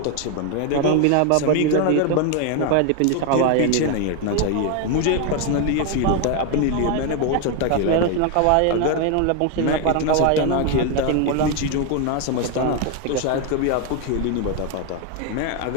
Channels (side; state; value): both; different; correlation 0.01